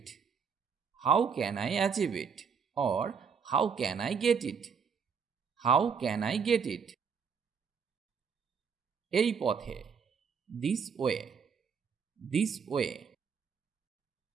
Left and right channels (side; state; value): left; quieter; 6.3 dB